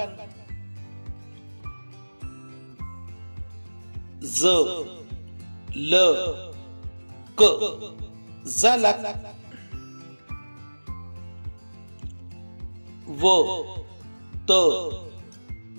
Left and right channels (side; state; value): both; inverted; correlation -1.00